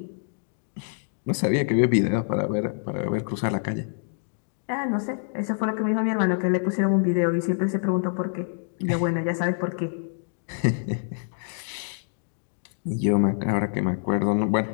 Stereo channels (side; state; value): right; silent; digital silence